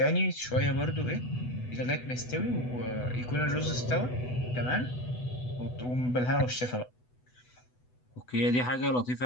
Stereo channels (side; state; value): right; late; 8.0 ms